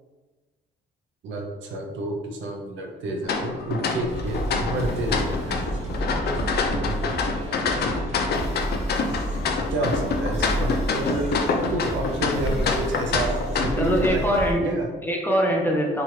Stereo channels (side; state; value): both; normal; correlation 0.48